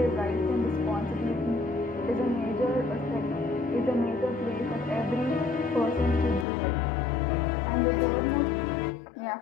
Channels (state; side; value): drops out; right; at 6.5 s